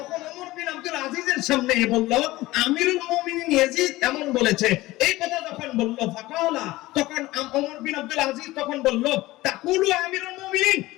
ওমর বিন আব্দুল আজিজের সামনে বলল আমিরুল মুমিনিন ইয়াজিদ এমন বলেছে। এই কথা যখন বলল ফাকালা, তখন ওমর বিন আব্দুল আজিজ তখন বলল তাকুলু আমিরুল মুমিনিন,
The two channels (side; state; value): right; quieter; 18.4 dB